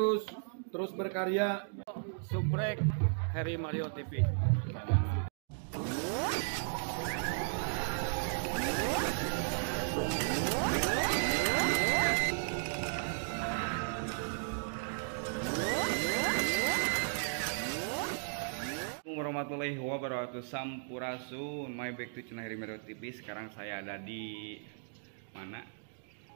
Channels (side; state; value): left; silent; digital silence